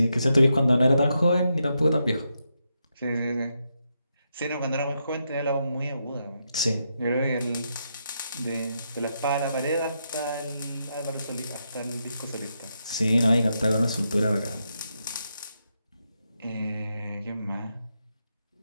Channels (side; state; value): both; inverted; correlation -0.83